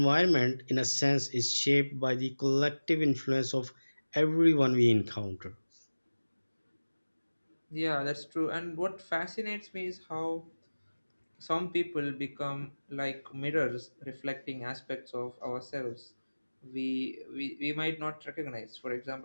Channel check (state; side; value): inverted; both; correlation -1.00